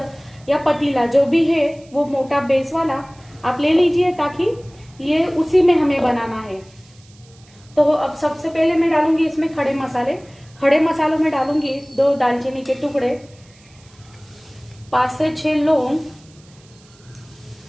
या पतीला जो भी है वो मोटा बेस वाला आप ले लीजिए, ताकि ये उसी में हमें बनाना है। तो अब सबसे पहले मैं डालूंगी इसमें खड़े मसाले। खड़े मसालों में डालूंगी 2 दालचीनी के टुकड़े, 5 से 6 लौंग,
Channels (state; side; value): noise; right; hiss, 28 dB below the sound